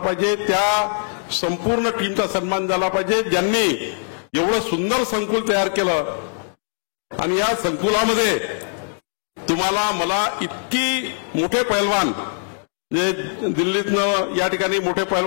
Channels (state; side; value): silent; right; 65 dB below the other